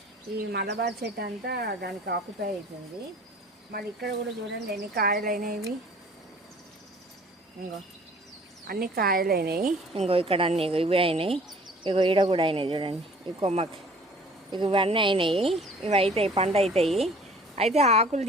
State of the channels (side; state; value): both; normal; correlation 0.51